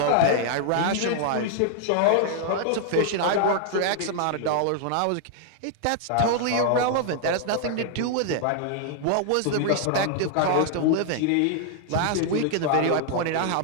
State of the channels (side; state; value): both; different; correlation -0.01